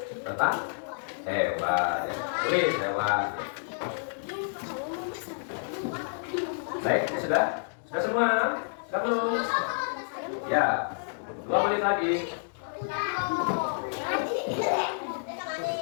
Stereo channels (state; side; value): silent; right; digital silence